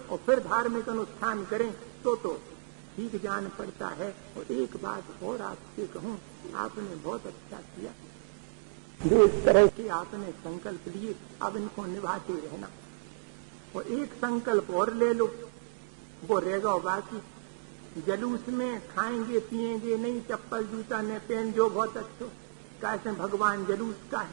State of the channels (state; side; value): quieter; left; 35.4 dB